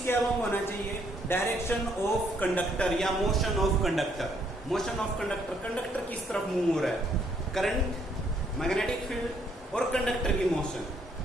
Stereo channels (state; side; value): normal; both; correlation 0.69